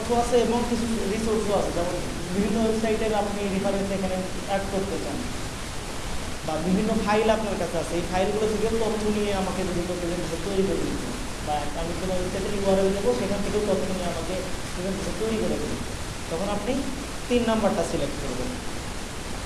আছে এবং কিছু রিসোর্সও আছে, যেমন বিভিন্ন ওয়েবসাইটের আপনি রেফারেন্স এখানে অ্যাড করতে চান, বা বিভিন্ন ফাইল আপনার কাছে আছে, এই ফাইলগুলো থেকেও তথ্য নিয়ে আমাকে যদি কেউ প্রেজেন্টেশন তৈরি করে দিত, বা আমি কোনো ওয়েবসাইটের ইউআরএল দেবো, সেখান থেকেও তথ্য নিয়ে আমাকে প্রেজেন্টেশন তৈরি করে দেবে, তখন আপনি 3 নাম্বারটা সিলেক্ট করবেন।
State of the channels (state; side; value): identical; both; correlation 1.00